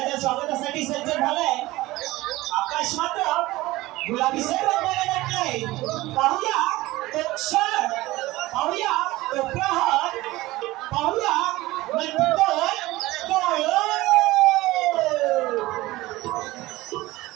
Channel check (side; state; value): left; quieter; 18.7 dB